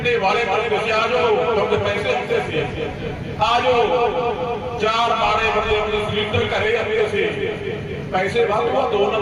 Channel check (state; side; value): identical; both; correlation 1.00